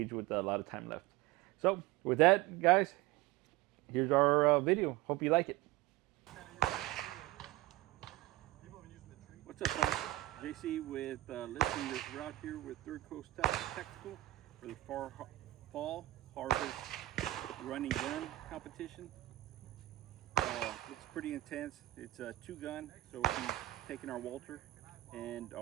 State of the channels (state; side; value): quieter; left; 16.9 dB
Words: with a lot of time left. So with that, guys, here's our video. Hope you like it. What's up, guys? JC with listing this route here with Third Coast Tactical for the fall harvest running gun competition. Looks pretty intense. It's a 2-gun, so we'll be taking our Walther and